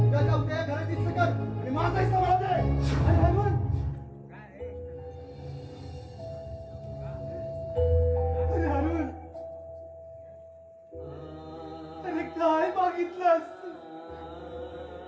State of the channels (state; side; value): identical; both; correlation 1.00